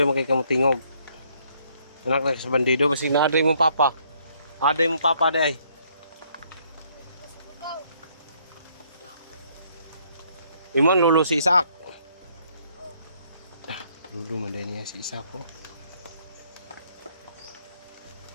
mo kay kamutingog. Anak na sa bandido, basig na aday mong papa. Aday mong papa day. Imon lulu si Isak. Lulu man din niya si Isak ko.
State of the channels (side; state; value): both; inverted; correlation -0.67